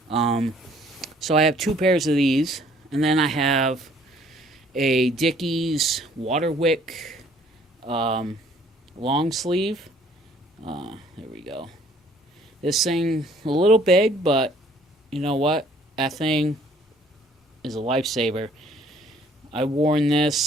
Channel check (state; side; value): normal; both; correlation 0.59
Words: So I have two pairs of these, and then I have a Dickies Waterwick long sleeve. There we go. This thing a little big, but you know what? That thing is a lifesaver. I worn